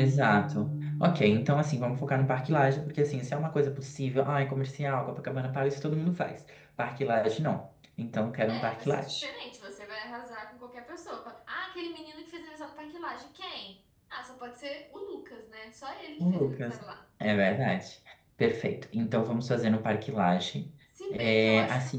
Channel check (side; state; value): both; identical; correlation 1.00